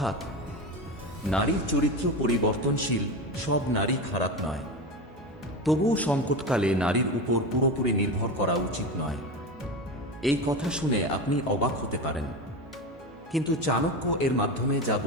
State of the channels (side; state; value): both; normal; correlation 0.22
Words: নারীর চরিত্র পরিবর্তনশীল, সব নারী খারাপ নয়, তবুও সংকটকালে নারীর উপর পুরোপুরি নির্ভর করা উচিত নয়। এই কথা শুনে আপনি অবাক হতে পারেন, কিন্তু চাণক্য এর মাধ্যমে যা